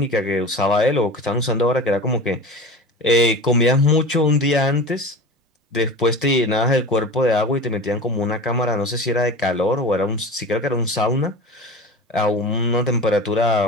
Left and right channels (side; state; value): both; normal; correlation 0.33